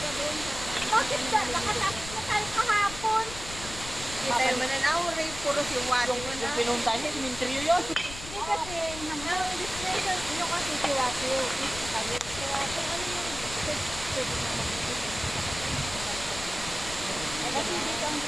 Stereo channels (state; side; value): noise; left; rumble, 12 dB below the sound